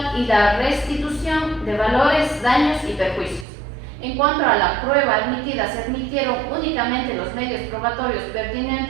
y la restitución de valores, daños y perjuicios. En cuanto a la prueba admitida, se admitieron únicamente los medios probatorios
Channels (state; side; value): drops out; left; at 3.5 s